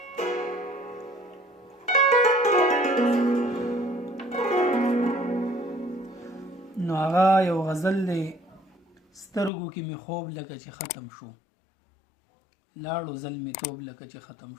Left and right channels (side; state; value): right; drops out; at 9.5 s